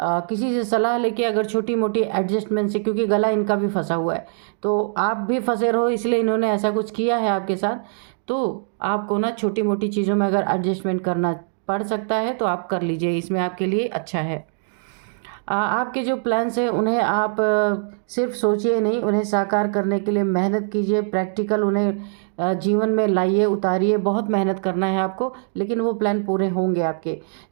से सलाह लेके, अगर छोटी मोटी एडजस्टमेंट से, क्योंकि गला इनका भी फंसा हुआ है, तो आप भी फंसे रहो, इसलिए इन्होंने ऐसा कुछ किया है आपके साथ। तो आपको ना छोटी मोटी चीज़ों में अगर एडजस्टमेंट करना पड़ सकता है तो आप कर लीजिए, इसमें आपके लिए अच्छा है। आपके जो प्लान्स हैं उन्हें आप सिर्फ सोचिए नहीं, उन्हें साकार करने के लिए मेहनत कीजिए, प्रैक्टिकल उन्हें जीवन में लाइए, उतारिए। बहुत मेहनत करना है आपको, लेकिन वो प्लान पूरे होंगे आपके।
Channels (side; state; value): left; silent; 64 dB below the other